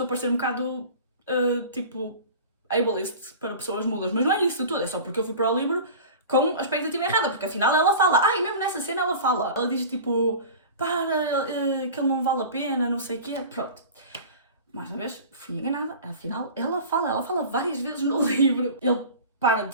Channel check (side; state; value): both; inverted; correlation -0.37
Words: a parecer um bocado, tipo, ableist para pessoas mudas, mas não é isso tudo, é só porque eu fui para o livro com a expectativa errada, porque afinal ela fala, e mesmo nessa cena ela fala, ela diz tipo, que ele não vale a pena, não sei o quê, pronto. Mais uma vez, fui enganada, afinal ela fala várias vezes no livro. Ele para de